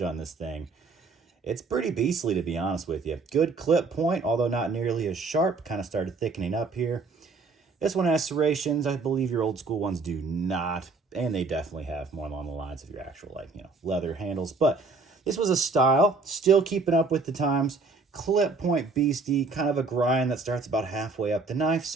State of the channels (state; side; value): quieter; left; 4.0 dB